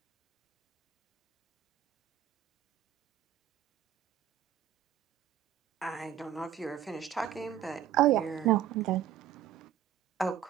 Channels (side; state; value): left; quieter; 10.0 dB